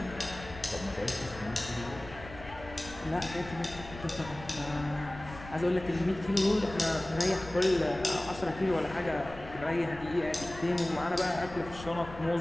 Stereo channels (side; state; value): left; noise; rumble, 15 dB below the sound